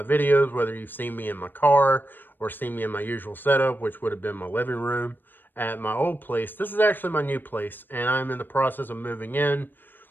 videos, whether you've seen me in my car or seen me in my usual setup, which would have been my living room at my old place. This is actually my new place, and I'm in the process of moving in.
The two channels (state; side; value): late; right; 0.093 ms